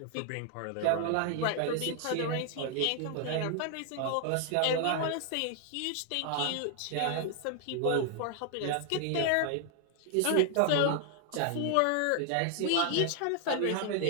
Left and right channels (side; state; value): both; different; correlation 0.00